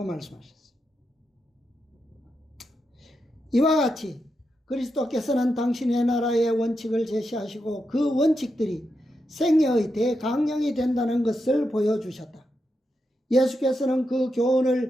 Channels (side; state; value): both; normal; correlation 0.86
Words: 말씀하셨어요. 이와 같이 그리스도께서는 당신의 나라의 원칙을 제시하시고 그 원칙들이 생애의 대강령이 된다는 것을 보여주셨다. 예수께서는 그